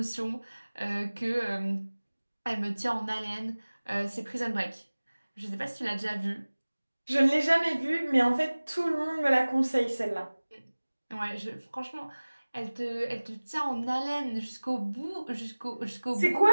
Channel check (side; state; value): both; inverted; correlation -1.00